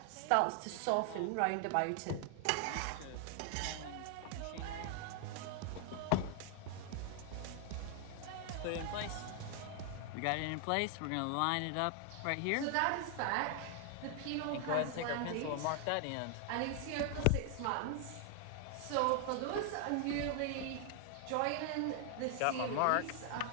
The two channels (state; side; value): different; both; correlation 0.00